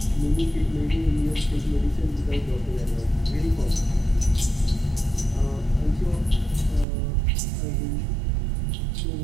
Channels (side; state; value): left; drops out; at 6.9 s